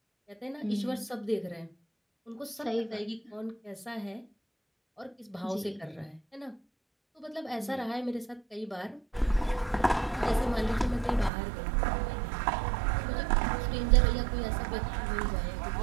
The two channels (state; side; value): drops out; left; at 11.3 s